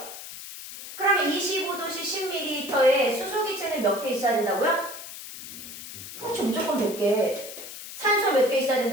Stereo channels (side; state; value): left; noise; hiss, 12 dB below the sound